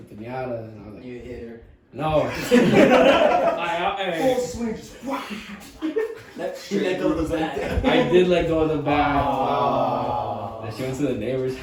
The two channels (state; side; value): identical; both; correlation 1.00